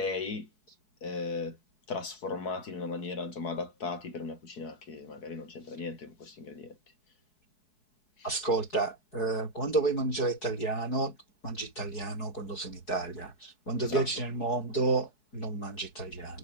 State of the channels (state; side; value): late; right; 4.7 ms